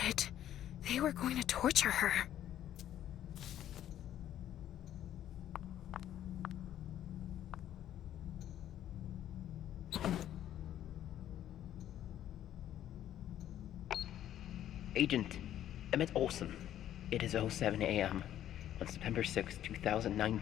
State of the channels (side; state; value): right; quieter; 11.5 dB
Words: They were going to torture her. Agent Emmett Olson. It is 07 a.m. on September 6,